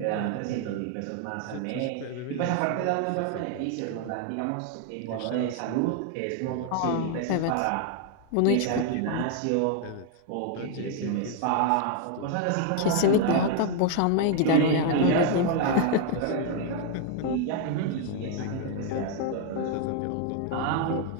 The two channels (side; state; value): both; different; correlation 0.01